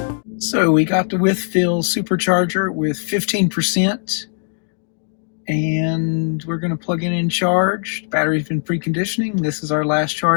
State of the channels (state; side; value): silent; right; digital silence